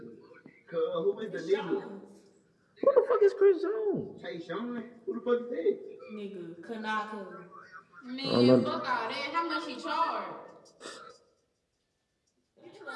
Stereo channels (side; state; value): both; identical; correlation 1.00